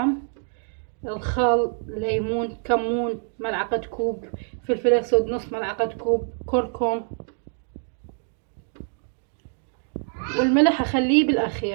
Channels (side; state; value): left; silent; 58 dB below the other